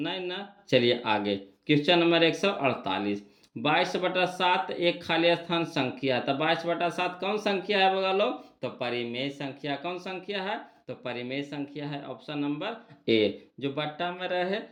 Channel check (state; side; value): identical; both; correlation 1.00